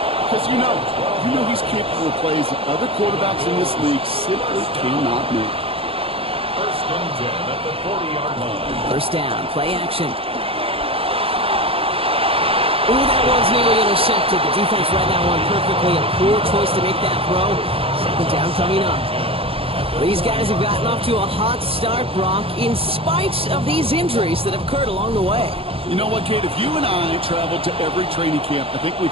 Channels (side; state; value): left; late; 0.27 ms